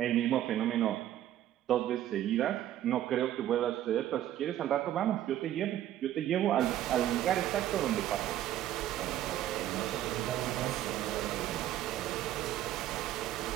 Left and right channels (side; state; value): left; quieter; 12.4 dB